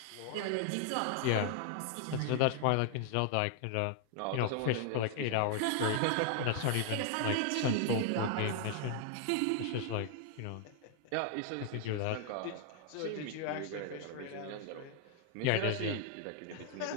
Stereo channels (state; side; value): different; both; correlation -0.01